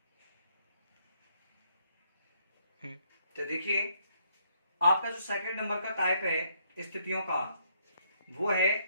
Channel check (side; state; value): both; inverted; correlation -0.70